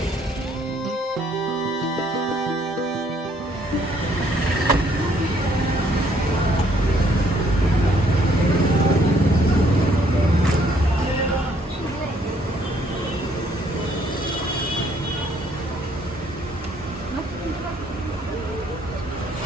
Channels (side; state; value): both; normal; correlation 0.66